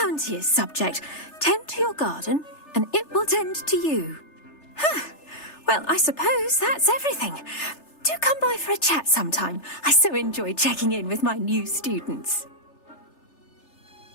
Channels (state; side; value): late; right; 3.3 ms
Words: subject. Tend to your garden, and it will tend to you. Huh. Well, I suppose that's everything. Do come by for a chat sometime. I so enjoy checking in with my new students.